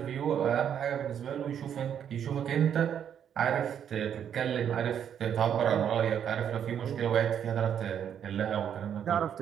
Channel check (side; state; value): left; quieter; 8.8 dB